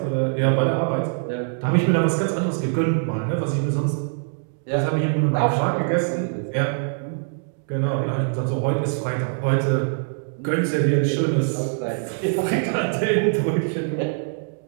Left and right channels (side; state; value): left; silent; digital silence